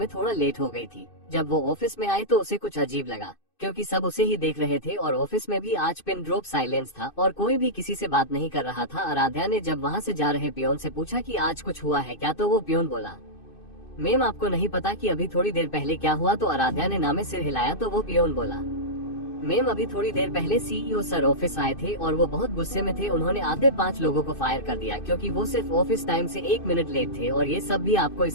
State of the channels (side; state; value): right; late; 2.6 ms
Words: थोड़ा लेट हो गई थी। जब वो ऑफिस में आई तो उसे कुछ अजीब लगा, क्योंकि सब उसे ही देख रहे थे और ऑफिस में भी आज पिन ड्रॉप साइलेंस था और कोई भी किसी से बात नहीं कर रहा था। आराध्या ने जब वहाँ से जा रहे पियोन से पूछा कि आज कुछ हुआ है क्या, तो वो पियोन बोला, मैम आपको नहीं पता कि अभी थोड़ी देर पहले क्या हुआ? तो आराध्या ने नामे सिर हिलाया तो वो पियोन बोला, मैम अभी थोड़ी देर पहले सीईओ सर ऑफिस आए थे और वो बहुत गुस्से में थे। उन्होंने आधे 5 लोगों को फायर कर दिया क्योंकि वो सिर्फ ऑफिस टाइम से 1 मिनट लेट थे, और ये सब भी आपको